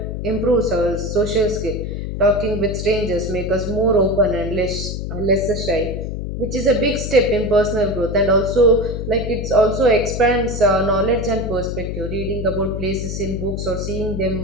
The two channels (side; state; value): left; noise; hum, 5 dB below the sound